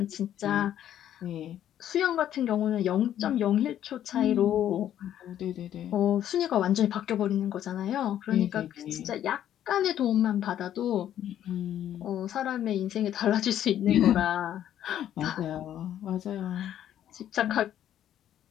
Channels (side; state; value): right; quieter; 11.0 dB